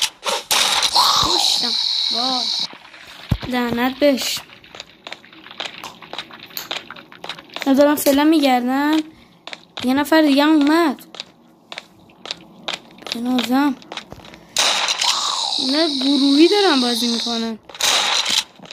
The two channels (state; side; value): identical; both; correlation 1.00